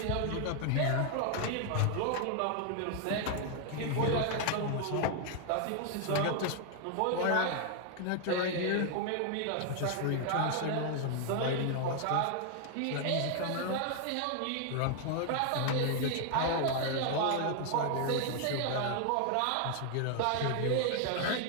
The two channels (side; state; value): both; different; correlation 0.00